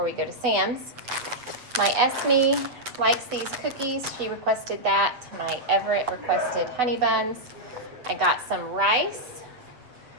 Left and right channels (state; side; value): late; left; 8.1 ms